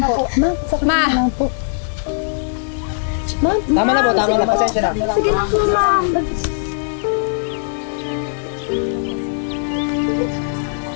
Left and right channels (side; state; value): right; silent; digital silence